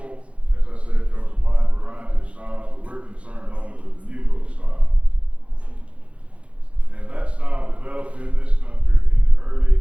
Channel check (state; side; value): late; left; 0.062 ms